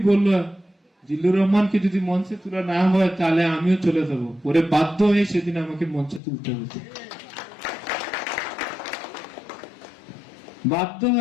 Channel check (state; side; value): drops out; right; at 6.2 s